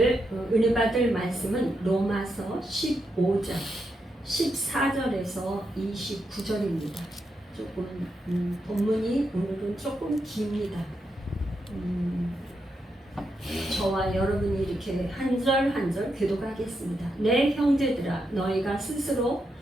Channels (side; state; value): both; normal; correlation 0.83